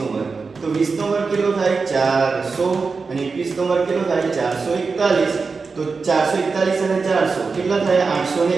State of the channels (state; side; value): quieter; left; 4.6 dB